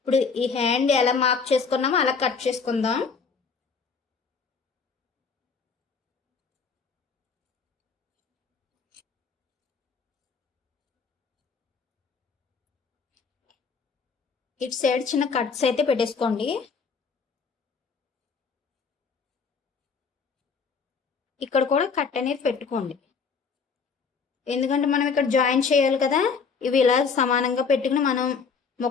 ఈ హ్యాండ్ ఎలా మార్క్ చేసుకున్నామో అలా కట్ చేసుకుందాం. ఇటు సైడ్ చిన్న కట్స్ అయితే పెట్టేసుకోండి. ఇక్కడ కూడా కట్ అనేది పెట్టుకోండి, ఎందుకంటే మనం ఇక్కడ జాయిన్ చేయాలి కదా. ఇవి ఇలా సమానంగా పెట్టుకుని మనం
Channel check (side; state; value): right; quieter; 5.4 dB